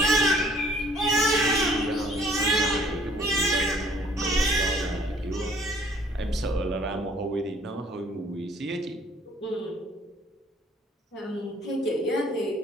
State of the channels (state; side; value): normal; both; correlation 0.58